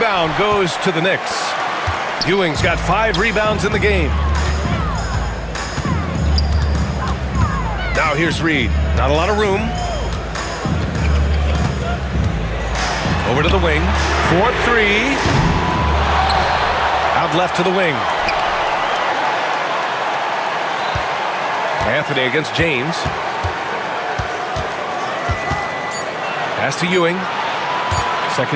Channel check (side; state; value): both; identical; correlation 1.00